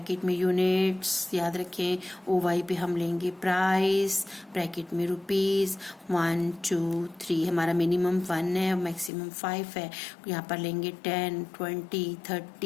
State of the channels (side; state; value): right; drops out; at 9.1 s